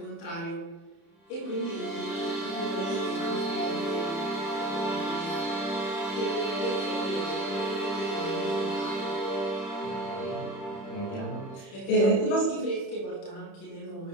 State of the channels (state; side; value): late; right; 30 ms